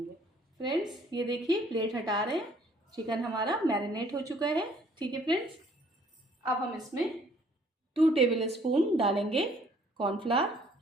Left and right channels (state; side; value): normal; both; correlation 0.60